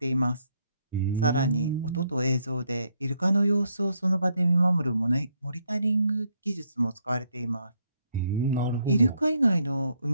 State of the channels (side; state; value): both; inverted; correlation -0.74